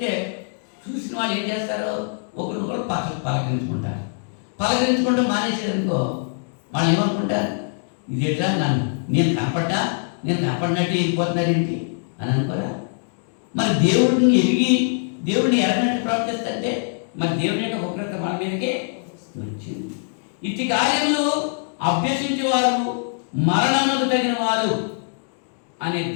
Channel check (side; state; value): right; silent; digital silence